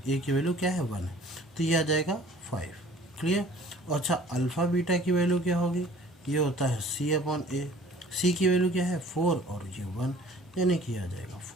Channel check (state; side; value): normal; both; correlation 0.51